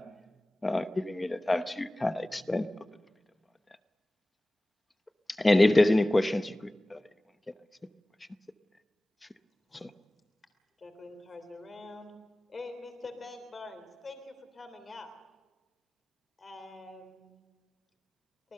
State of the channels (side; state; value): both; normal; correlation 0.98